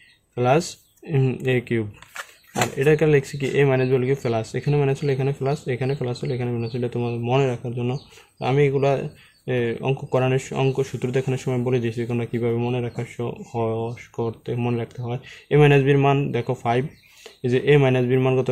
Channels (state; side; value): identical; both; correlation 1.00